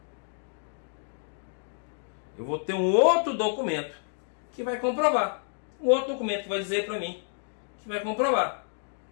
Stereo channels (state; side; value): silent; right; digital silence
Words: Eu vou ter um outro documento que vai comprovar. Um outro documento que vai dizer para mim que vai comprovar.